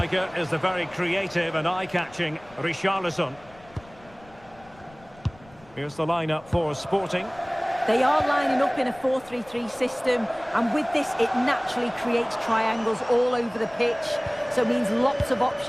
is the very creative and eye-catching Richarlison. Here's the lineup for Sporting. They are lining up in a 4-3-3 system, and with this it naturally creates triangles all over the pitch, so it means lots of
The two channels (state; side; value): noise; left; rumble, 25 dB below the sound